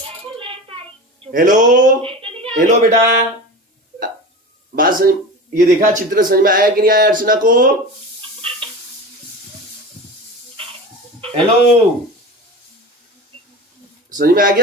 हेलो बेटा, बात समझ, ये देखा चित्र समझ में आया कि नहीं आया अर्चना को? हेलो, समझ में आ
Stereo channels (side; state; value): both; normal; correlation 0.31